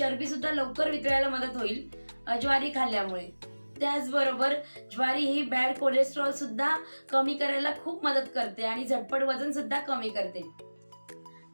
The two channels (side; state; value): both; inverted; correlation -1.00